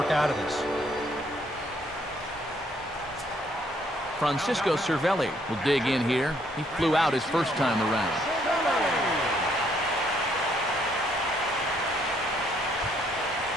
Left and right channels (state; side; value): normal; both; correlation 0.68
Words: out of this. Francisco Cervelli will dig in here. He flew out his first time around.